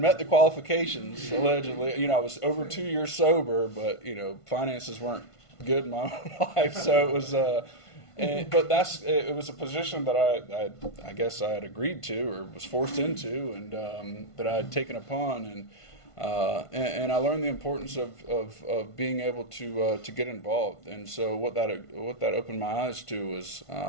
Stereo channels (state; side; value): late; right; 1.5 ms